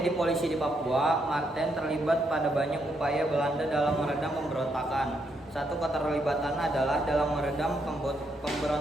polisi di Papua, Martin terlibat pada banyak upaya Belanda dalam meredam pemberontakan. Satu keterlibatan adalah dalam meredam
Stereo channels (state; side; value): normal; both; correlation 0.77